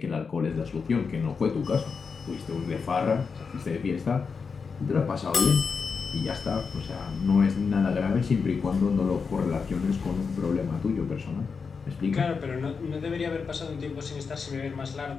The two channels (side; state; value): right; quieter; 5.4 dB